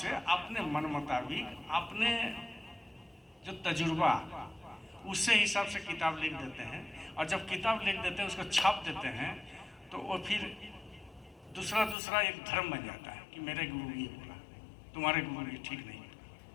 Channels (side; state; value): right; drops out; at 12.0 s